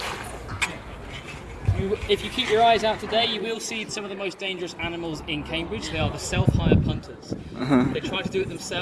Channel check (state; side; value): identical; both; correlation 1.00